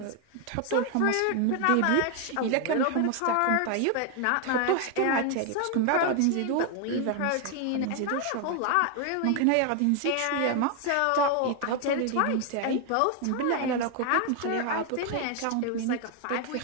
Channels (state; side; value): different; both; correlation 0.01